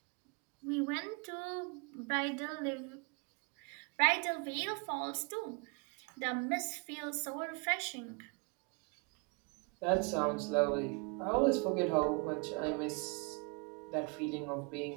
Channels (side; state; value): left; quieter; 33.1 dB